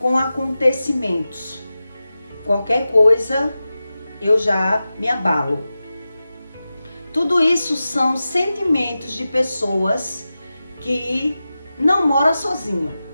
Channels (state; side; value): inverted; both; correlation -0.94